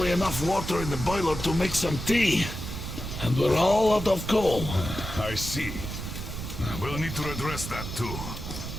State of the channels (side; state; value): right; noise; rumble, 7 dB below the sound